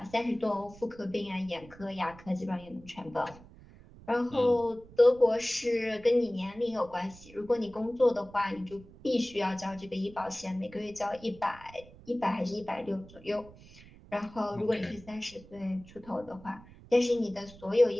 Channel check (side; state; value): right; noise; rumble, 21 dB below the sound